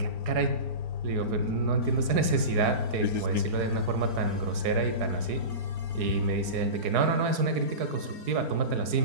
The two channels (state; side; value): late; left; 4.8 ms